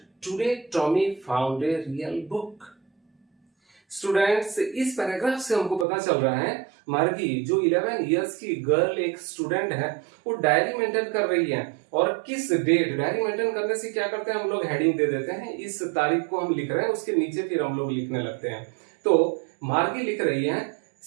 "Today Tommy found a real book." Students, इस पैराग्राफ से हमको पता चल रहा है मार्गी जो 11 इयर्स की गर्ल एक स्टूडेंट है, वो डायरी मेंटेन कर रही है। और किस डेट, डायरी मेंटेन करने से क्या करते हैं हम लोग, हेडिंग दे देते हैं। इस तारीख को हम लिख रहे हैं, उसके नीचे फिर हम लोग लिखने लगते हैं। तो मार्गी लिख रही है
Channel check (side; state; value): left; drops out; at 5.9 s